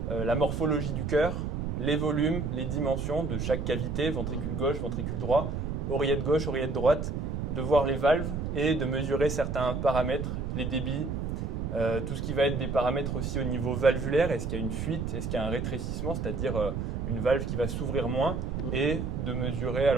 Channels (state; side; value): noise; right; rumble, 2 dB below the sound